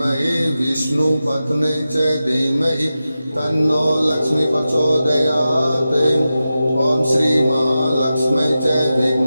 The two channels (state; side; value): inverted; both; correlation -0.93